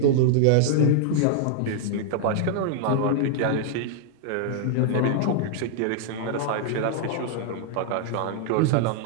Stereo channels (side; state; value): both; different; correlation -0.01